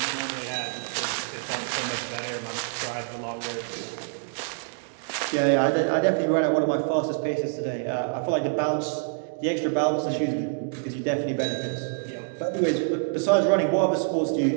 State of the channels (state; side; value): silent; left; digital silence